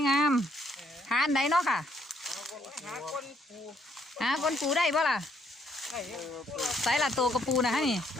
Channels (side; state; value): both; normal; correlation 0.69